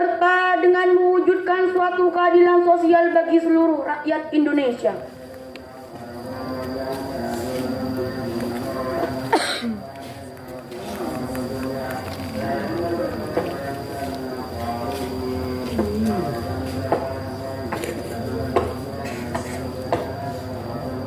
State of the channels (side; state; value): both; identical; correlation 1.00